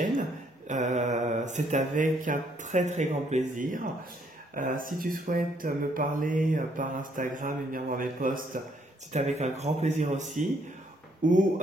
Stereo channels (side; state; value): both; normal; correlation 0.69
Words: c'est avec un très très grand plaisir. Si tu souhaites me parler par Instagram et venir voir mes posts, c'est avec un grand plaisir aussi. Ou